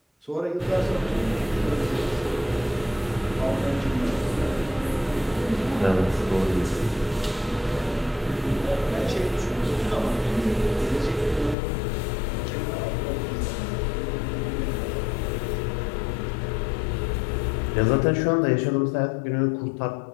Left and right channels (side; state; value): right; drops out; at 11.6 s